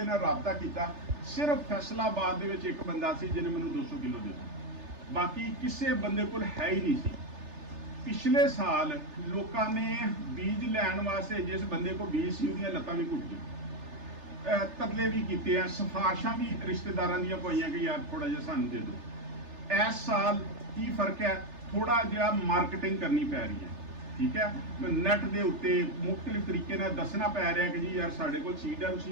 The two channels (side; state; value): left; late; 3.3 ms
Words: ਨਾਲ ਰਾਬਤਾ ਕੀਤਾ। ਸਿਰਫ ਫੈਸਲਾਬਾਦ ਦੇ ਵਿੱਚ ਇੱਕ ਬੰਦਾ ਸੀ ਜਿਹਨੇ ਮੈਨੂੰ 200 ਕਿਲੋ ਦਿੱਤਾ, ਬਾਕੀ ਕਿਸੇ ਬੰਦੇ ਕੋਲ ਹੈ ਹੀ ਨਹੀਂ ਸੀ। ਪਿਛਲੇ ਸਾਲ ਲੋਕਾਂ ਨੇ ਬੀਜ ਲੈਣ ਵਾਸਤੇ, ਜਿਸ ਬੰਦੇ ਕੋਲ ਬੀਜ ਸੀ ਉਹਦੀਆਂ ਲੱਤਾਂ ਵੀ ਘੁੱਟ ਗਈਆਂ, ਤਰਲੇ ਵੀ ਕੀਤੇ ਆ, ਸਿਫਾਰਸ਼ਾਂ ਵੀ ਰਿਸ਼ਤੇਦਾਰਾਂ ਦੀਆਂ ਪਾਈਆਂ ਕਿ ਯਾਰ ਥੋੜਾ ਜਿਹਾ ਸਾਨੂੰ ਦੇ ਦਿਓ। ਇਸ ਸਾਲ ਕੀ ਫਰਕ ਹੈ, ਥੋੜਾ ਜਿਹਾ ਮਾਰਕੀਟਿੰਗ ਕਰਨੀ ਪੈ ਰਹੀ ਹੈ। ਠੀਕ ਹੈ, ਨੈਟ ਦੇ ਉੱਤੇ ਮੁxtਲਿਫ ਤਰੀਕੇ ਨਾਲ ਦੱਸਣਾ ਪੈ ਰਿਹਾ ਕਿ ਜੀ ਯਾਰ ਸਾਡੇ ਕੋਲ ਸੀਡ ਹੈ,